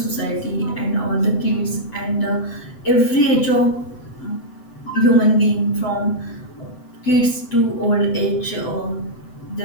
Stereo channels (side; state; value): right; late; 7.9 ms